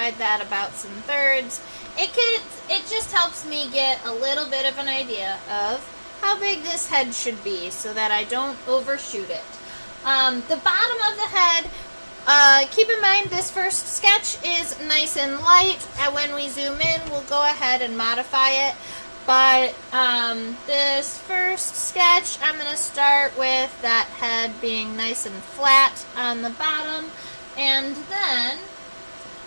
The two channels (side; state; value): both; inverted; correlation -1.00